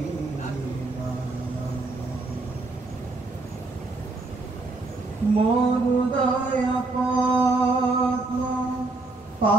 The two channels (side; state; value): left; quieter; 3.2 dB